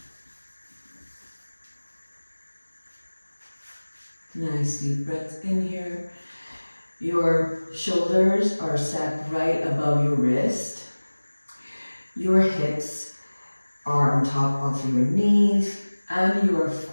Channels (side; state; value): both; inverted; correlation -1.00